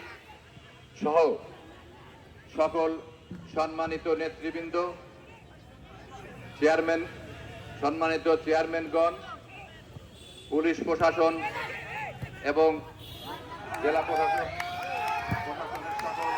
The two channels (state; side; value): identical; both; correlation 1.00